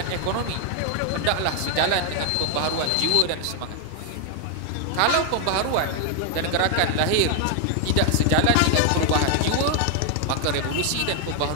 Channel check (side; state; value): both; different; correlation 0.00